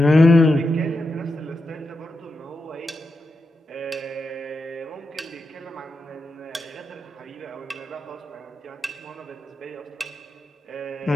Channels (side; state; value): both; normal; correlation 0.88